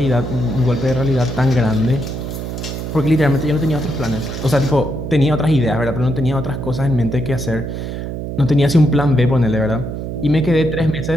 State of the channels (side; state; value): right; noise; hum, 6 dB below the sound